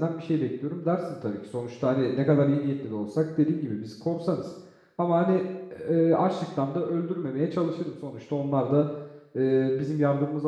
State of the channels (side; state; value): both; identical; correlation 1.00